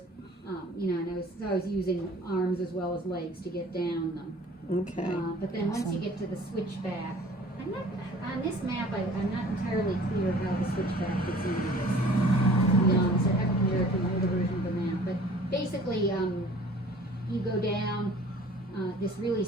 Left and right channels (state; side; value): normal; both; correlation 0.50